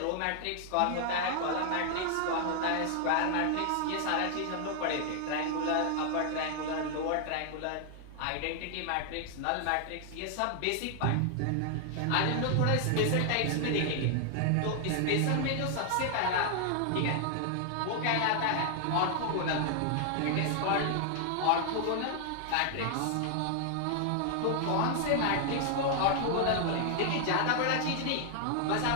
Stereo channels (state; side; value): different; both; correlation 0.00